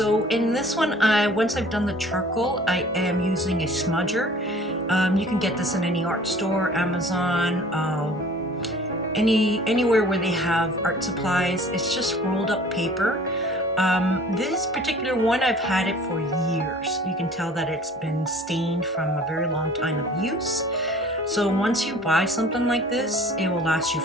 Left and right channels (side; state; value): both; normal; correlation 0.49